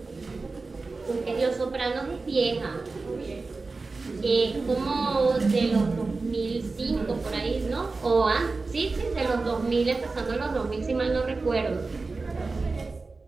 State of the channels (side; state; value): left; quieter; 3.8 dB